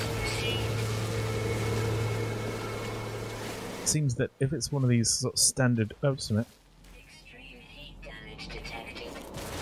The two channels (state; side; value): identical; both; correlation 1.00